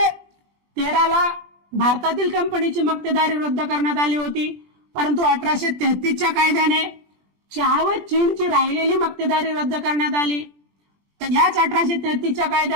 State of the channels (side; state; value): left; late; 20 ms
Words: भारतातील कंपनीची मक्तेदारी रद्द करण्यात आली होती, परंतु 1833च्या कायद्याने चहा व चीनची राहिलेली मक्तेदारी रद्द करण्यात आली. तर याच 1833च्या